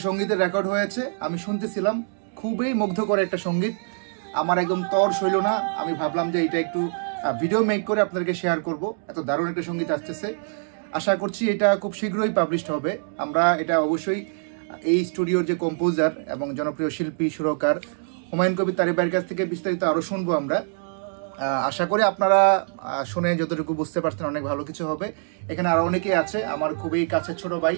সঙ্গীতের রেকর্ড হয়েছে, আমি শুনতেছিলাম। খুবই মুগ্ধকর একটা সঙ্গীত, আমার একদম তর সইল না। আমি ভাবলাম যে এটা একটু ভিডিও মেক করে আপনাদেরকে শেয়ার করব। এত দারুণ একটা সঙ্গীত আসতেছে। আশা করছি এটা খুব শীঘ্রই পাবলিশড হবে। আমরা এটা অবশ্যই এই স্টুডিওর যে কম্পোজার এবং জনপ্রিয় শিল্পী সুরকার হুমায়ুন কবির তারিক ভাইয়ের কাছ থেকে বিস্তারিত আরো শুনবো আমরা। আশা করি আপনারা শুনে যতটুকু বুঝতে পারছেন অনেক ভালো কিছু হবে। এখানে আরো অনেকেই আছে, আমার খুবই কাছের ছোট ভাই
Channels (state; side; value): silent; left; digital silence